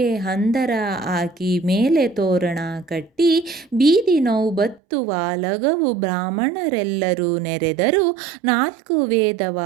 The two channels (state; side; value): drops out; left; at 4.8 s